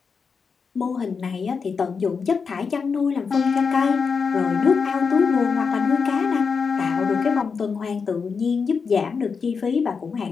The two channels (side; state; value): right; quieter; 5.5 dB